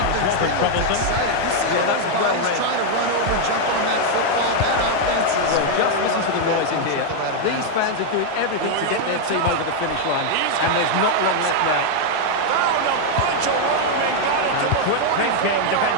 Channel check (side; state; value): both; different; correlation 0.00